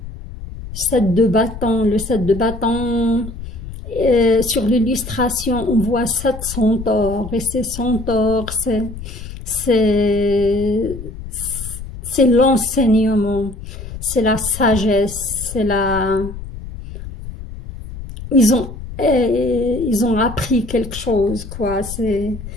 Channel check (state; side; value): noise; left; rumble, 11 dB below the sound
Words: de bâton, sur l'illustration, on voit 7 centaures. Et ces centaures, c'est l'enseignement, c'est la sagesse, c'est la... Ils ont appris quelque chose, quoi. Et